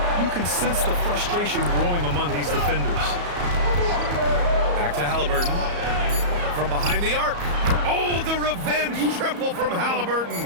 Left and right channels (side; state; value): left; late; 34 ms